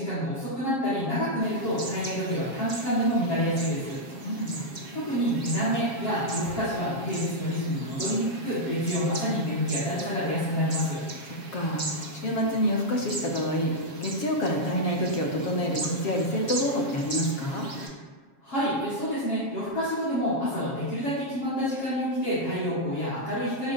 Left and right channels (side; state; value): right; late; 7.4 ms